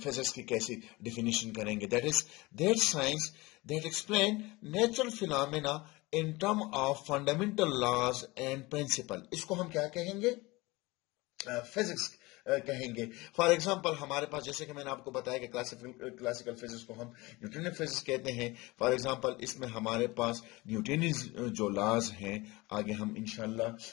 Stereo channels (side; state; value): right; quieter; 22.3 dB